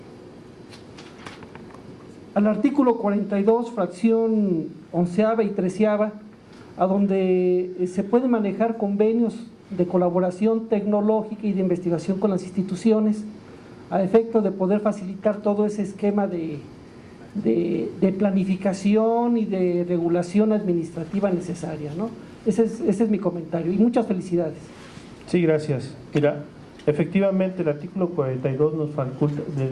al artículo 42, fracción 11ª y 13ª, a donde se pueden manejar convenios de colaboración tecnológica y de investigación con las instituciones, a efecto de poder facilitar todo ese esquema de planificación y de regulación administrativa necesaria, ¿no? Ese es mi comentario y muchas felicidades. Sí, gracias. Mira, efectivamente el artículo 42 de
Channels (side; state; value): both; identical; correlation 1.00